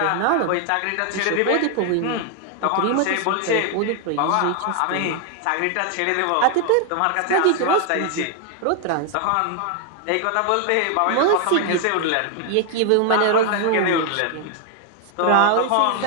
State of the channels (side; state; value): both; different; correlation 0.00